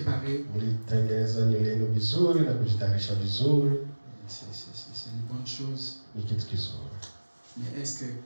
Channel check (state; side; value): inverted; both; correlation -1.00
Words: Mlitengeneza nywele yenu vizuri na kujitayarisha vizuri. C'est une bonne chose. Ni kitu kizuri. Mais est-ce que,